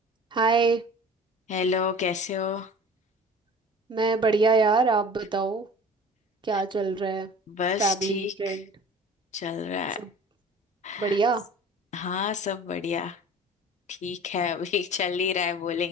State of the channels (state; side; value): normal; both; correlation 0.42